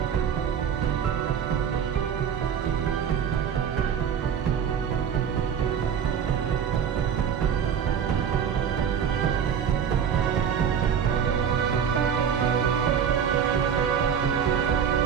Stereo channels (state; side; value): quieter; left; 7.9 dB